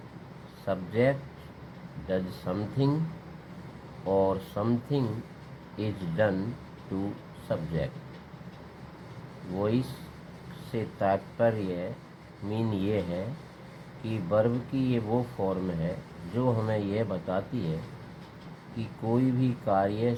subject does something or something is done to subject. Voice से तात्पर्य mean ये है कि verb की ये वो form है जो हमें यह बताती है कि कोई भी कार्य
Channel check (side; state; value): both; identical; correlation 1.00